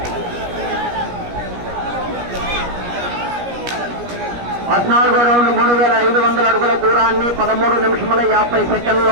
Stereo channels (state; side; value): late; left; 17 ms